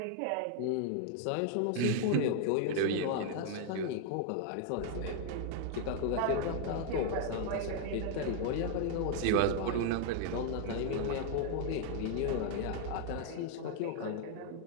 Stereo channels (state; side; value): different; both; correlation 0.00